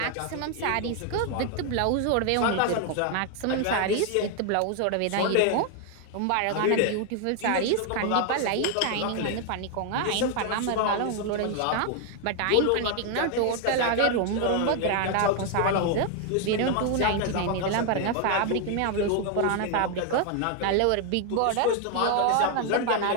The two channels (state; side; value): different; both; correlation 0.00